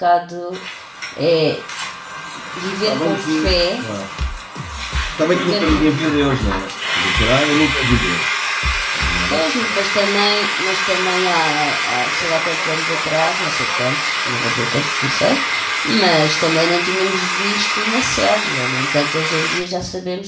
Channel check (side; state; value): both; identical; correlation 1.00